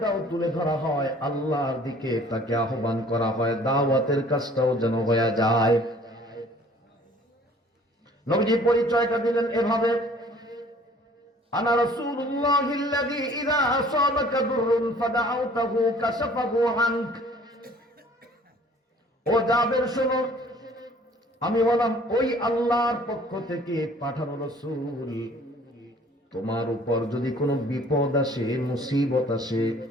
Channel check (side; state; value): both; normal; correlation 0.54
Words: তুলে ধরা হয়, আল্লাহর দিকে তাকে আহ্বান করা হয়, দাওয়াতের কাজটাও যেন হয়ে যায়। নবীজি পরিচয়টা দিলেন এভাবে, আনা রাসূলুল্লাহিল্লাযী ইযা আসাবাকা দুররুন ফাদাউতাহু কাশাফাহু আনক। ও জাবের শোনো, আমি হলাম ওই আল্লাহর পক্ষ থেকে পাঠানো রাসূল। তোমার উপর যদি কোনো বিপদ আসে, মুসিবত আসে,